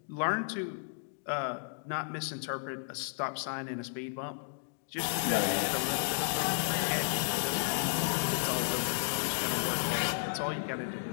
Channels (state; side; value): silent; right; digital silence